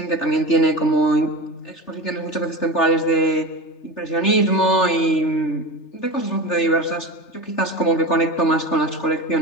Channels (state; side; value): late; right; 3.3 ms